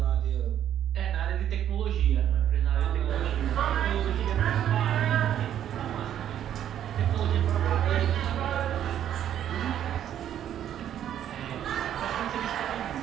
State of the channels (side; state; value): left; quieter; 10.5 dB